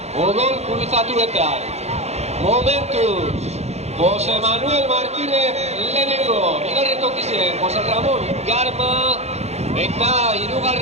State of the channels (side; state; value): left; late; 0.31 ms